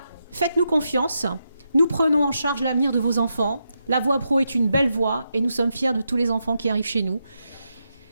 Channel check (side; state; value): both; inverted; correlation -0.85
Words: faites-nous confiance. Nous prenons en charge l'avenir de vos enfants. La voie pro est une belle voie et nous sommes fiers de tous les enfants qui arrivent chez nous.